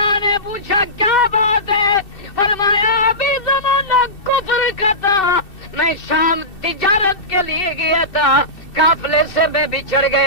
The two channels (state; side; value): late; right; 2.7 ms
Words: نے پوچھا کیا بات ہے؟ فرمایا ابھی زمانہ کفر کا تھا، میں شام تجارت کے لیے گیا تھا، قافلے سے میں بچھڑ